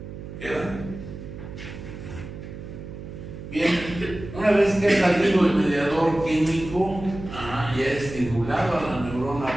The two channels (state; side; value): noise; right; hum, 11 dB below the sound